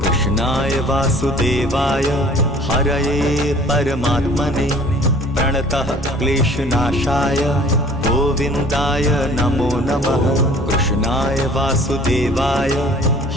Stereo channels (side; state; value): both; normal; correlation 0.51